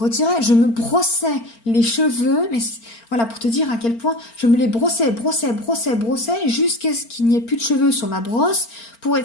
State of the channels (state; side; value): late; right; 4.4 ms